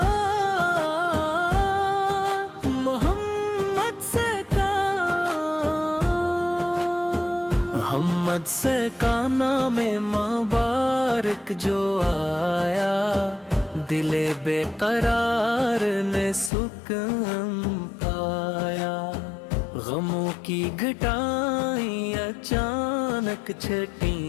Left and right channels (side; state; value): right; drops out; at 16.5 s